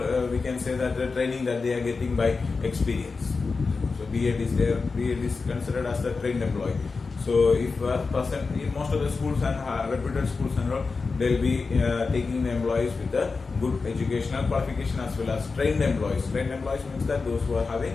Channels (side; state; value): right; quieter; 4.4 dB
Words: we can say that the training that they are getting by experience. So B.Ed is there, B.Ed is considered as the trained employee. So if a person in most of the schools and reputed schools and all, they'll be taking the employees with a good educational qualification as well as trained employees. Trained employees means that those who are